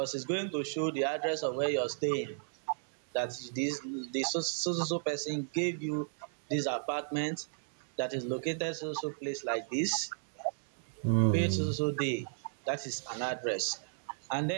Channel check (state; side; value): silent; left; digital silence